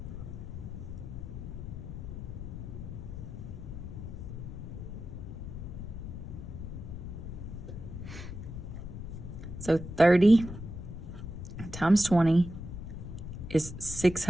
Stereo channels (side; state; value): left; noise; rumble, 8 dB below the sound